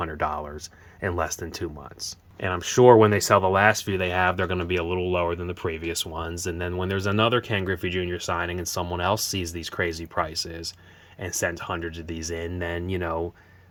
in less than 2 months. And I'm sure when they sell the last few they have, they're going to be a little lower than the previous ones. And then when there's another Ken Griffey Jr. signing and someone else sees these crazy prices and sends hundreds of these in, then,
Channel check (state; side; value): identical; both; correlation 1.00